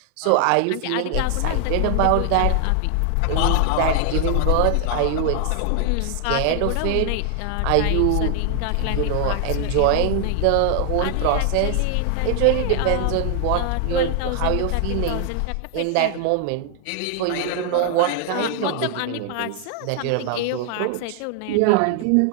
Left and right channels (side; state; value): both; different; correlation 0.00